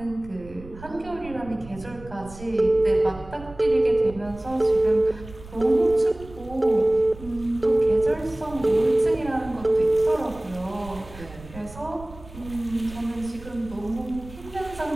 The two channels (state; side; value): noise; right; rumble, 17 dB below the sound